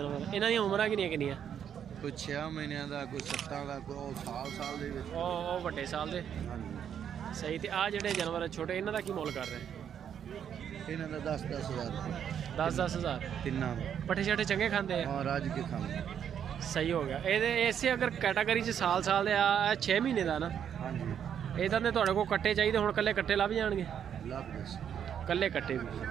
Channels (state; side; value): quieter; left; 8.7 dB